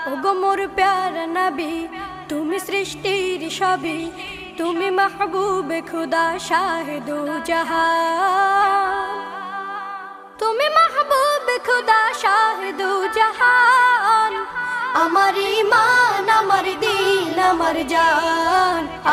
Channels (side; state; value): both; identical; correlation 1.00